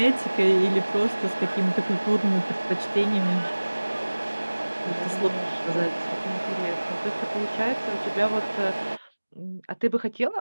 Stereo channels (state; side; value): inverted; both; correlation -1.00